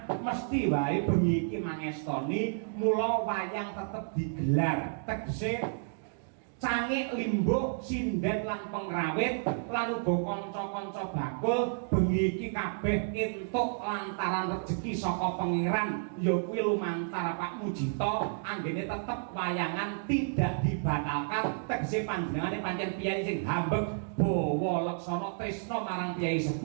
mesti wae bengi iki mangestoni mula wayang tetep digelar tegese cangik limbuk sinden lan pengrawit lan uga kanca-kanca bakul bengi iki kabeh entuk lantaran rejeki saka pangeran ya kuwi lumantar Pak Mujito anggene tetep wayangan tidak dibatalkan tegese panjenengane pancen piyai sing hambeg bawa laksana tresna marang piyai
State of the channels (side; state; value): left; silent; digital silence